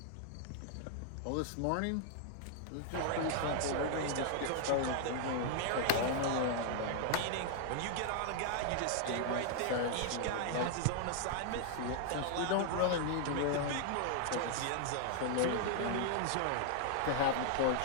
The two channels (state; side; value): different; both; correlation -0.01